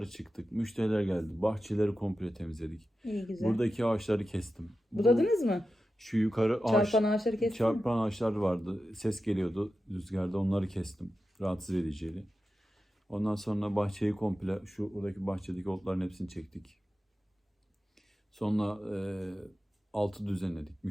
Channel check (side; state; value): both; normal; correlation 0.92